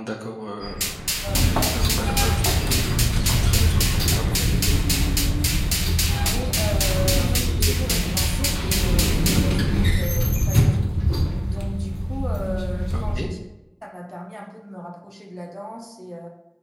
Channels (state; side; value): identical; both; correlation 1.00